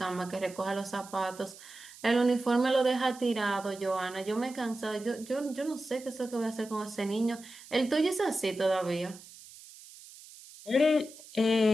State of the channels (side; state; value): right; noise; hiss, 19 dB below the sound